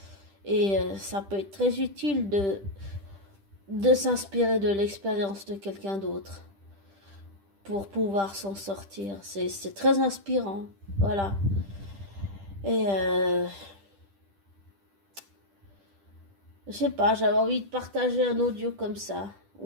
Et ça peut être très utile de s'inspirer de l'expérience de quelqu'un d'autre pour pouvoir s'en sortir. C'est très inspirant. Voilà. Et je sais pas, j'avais envie de partager un audio comme ça,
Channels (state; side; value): late; left; 10 ms